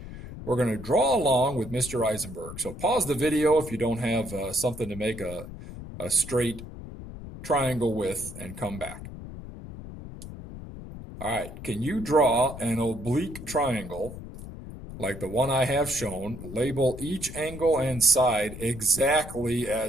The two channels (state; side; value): noise; left; rumble, 12 dB below the sound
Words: We're going to draw along with Mr. Eisenberg. So pause the video if you don't have something to make a straight triangle with and come back. All right, can you draw an oblique triangle like the one I have shown? Label each angle and side exactly